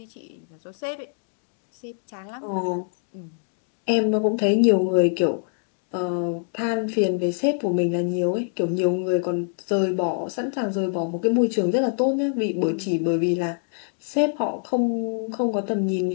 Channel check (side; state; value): right; silent; digital silence